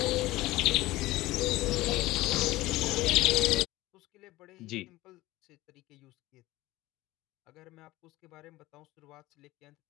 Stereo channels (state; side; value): quieter; right; 18.3 dB